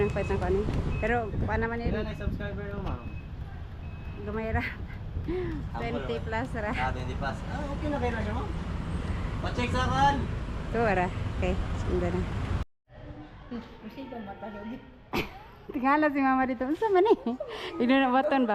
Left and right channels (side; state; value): both; identical; correlation 1.00